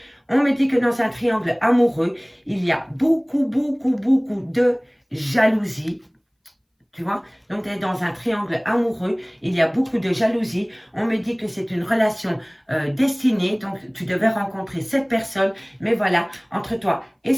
On me dit que dans un triangle amoureux, il y a beaucoup de jalousie. Tu vois, donc tu es dans un triangle amoureux, il y a beaucoup de jalousie. On me dit que c'est une relation destinée, donc tu devais rencontrer cette personne. Mais voilà, entre toi et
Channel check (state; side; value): identical; both; correlation 1.00